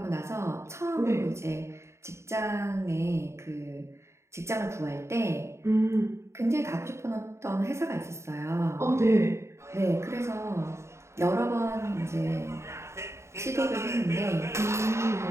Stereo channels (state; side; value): late; left; 0.13 ms